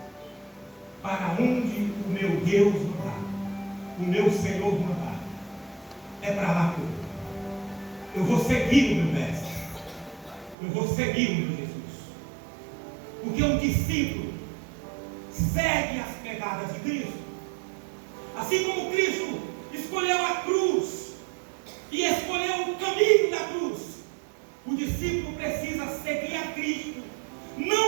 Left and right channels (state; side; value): drops out; left; at 10.6 s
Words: Para onde o meu Deus mandar, o meu Senhor mandar, é para lá que eu vou. Eu vou seguir o meu mestre. Eu vou seguir o meu Jesus. Porque um discípulo segue as pegadas de Cristo. Assim como Cristo escolheu a cruz e escolheu o caminho da cruz, o discípulo precisa seguir a Cristo,